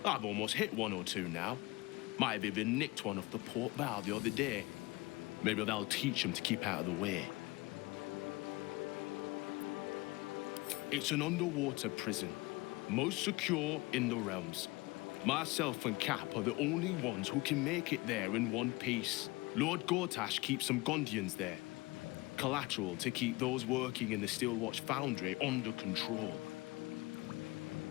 I've almost hit one or two now. Might have even nicked one off the port bow the other day. Maybe that'll teach them to keep out of the way. It's an underwater prison, most secure in the realms. Myself and Cap are the only ones who can make it there in one piece. Lord Gortash keeps some Gondians there. Collateral to keep those working in the Steelwatch Foundry under control.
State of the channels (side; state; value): right; quieter; 22.8 dB